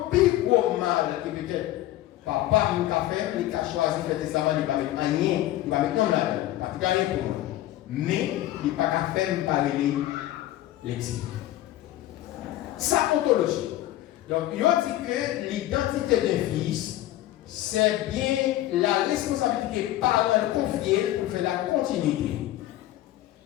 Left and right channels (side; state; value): right; quieter; 14.8 dB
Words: plus gros mal qui peut-être papa nous a fait, il a choisi de faire testament, il va mettre rien, il va mettre non là, parce qu'il rien pour moi. Mais il n'a pas qu'à faire parler l'exil. Ça ontologie. Donc, il a dit que l'identité d'un fils, c'est bien la responsabilité parentale confiée pour faire la continuité.